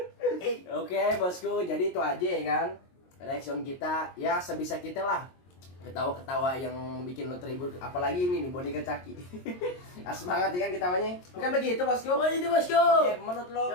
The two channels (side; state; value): right; late; 22 ms